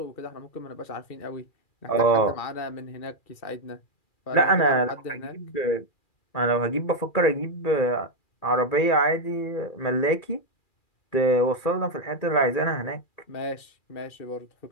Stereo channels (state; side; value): late; right; 2.4 ms